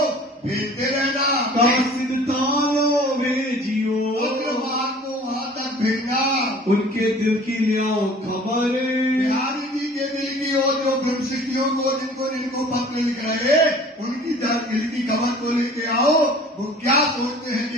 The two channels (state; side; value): normal; both; correlation 0.47